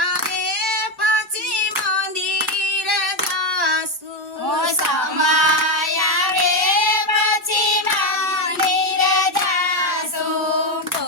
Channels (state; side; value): normal; both; correlation 0.09